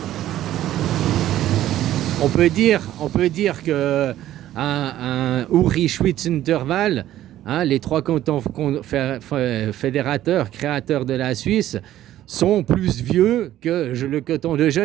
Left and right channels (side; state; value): left; quieter; 13.2 dB